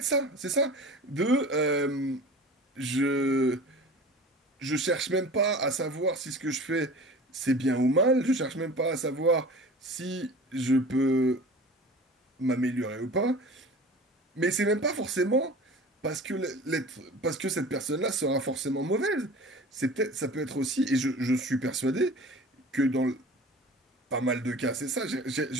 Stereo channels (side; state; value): both; normal; correlation 0.39